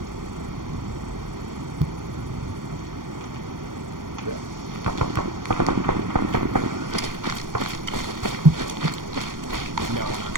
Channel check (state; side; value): late; left; 0.90 ms